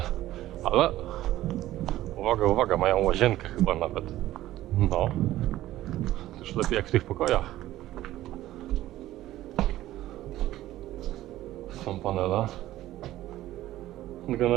Ale uwaga, uwaga, mają łazienkę chyba nawet. No. Już lepiej jak w tych pokojach. Są panele.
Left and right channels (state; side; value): quieter; left; 14.8 dB